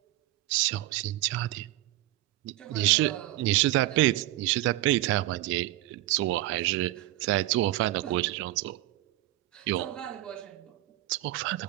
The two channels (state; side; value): quieter; left; 16.3 dB